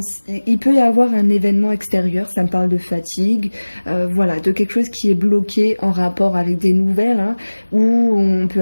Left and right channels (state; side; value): inverted; both; correlation -1.00